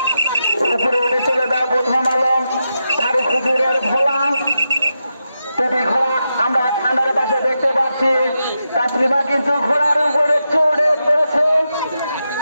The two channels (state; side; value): inverted; both; correlation -0.87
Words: উপরে উঠে চলে যাও। প্রথম আলো ফারুক হুজুরের ভোলা টুপি ঘোড়া আমরা ঠান্ডার পাশে দেখতে পাচ্ছি। তাসলিমা কিন্তু ঘোড়ার উপরে চড়ে পড়েছে।